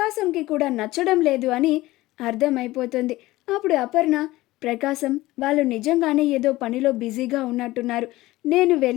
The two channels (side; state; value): right; quieter; 18.1 dB